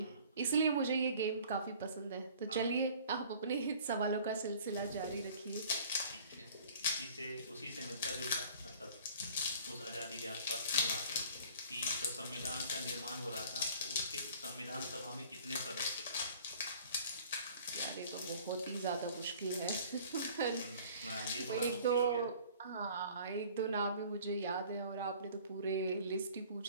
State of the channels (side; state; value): both; inverted; correlation -0.50